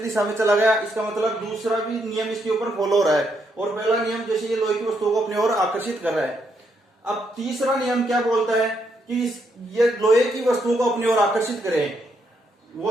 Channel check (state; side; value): normal; both; correlation 0.77